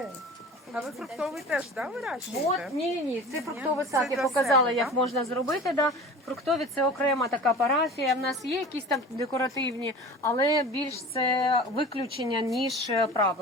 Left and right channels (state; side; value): normal; both; correlation 0.38